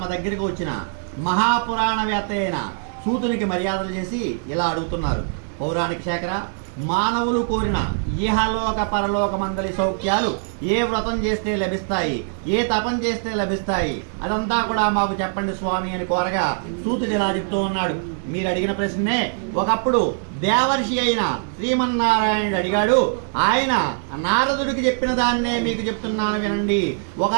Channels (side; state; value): left; silent; digital silence